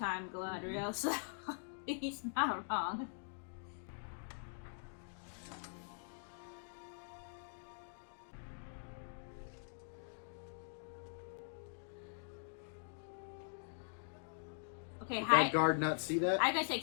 Galadriel, so he's not wrong. Okay, Did hide. that guard not see that? I gotta say,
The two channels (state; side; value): silent; right; digital silence